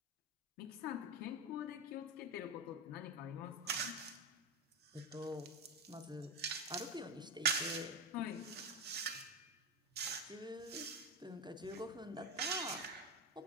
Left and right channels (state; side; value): normal; both; correlation 0.16